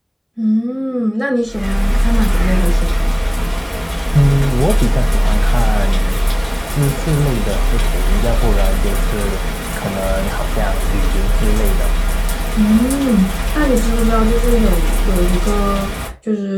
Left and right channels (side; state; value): both; identical; correlation 1.00